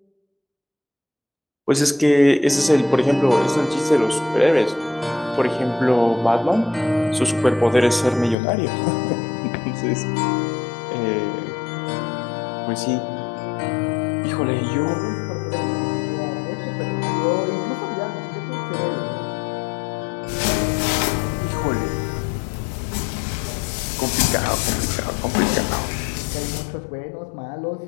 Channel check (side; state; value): right; drops out; at 8.3 s